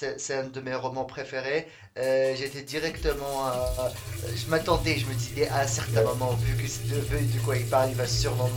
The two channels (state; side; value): identical; both; correlation 1.00